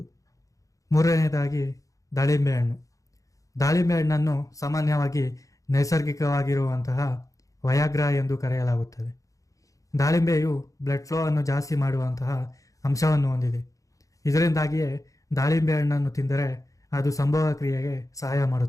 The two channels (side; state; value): right; late; 0.16 ms